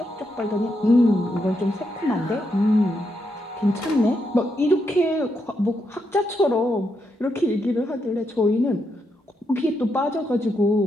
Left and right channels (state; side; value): normal; both; correlation 0.81